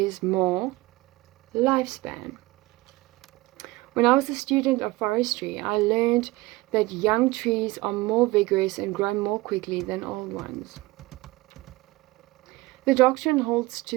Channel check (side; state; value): left; quieter; 20.5 dB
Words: more lifespan. When I was a student of forestry, I learned that young trees are more vigorous and grow more quickly than old ones. The doctrine holds